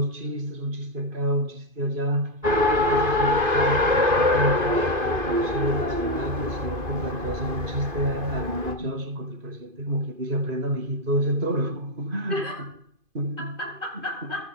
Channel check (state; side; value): late; left; 2.5 ms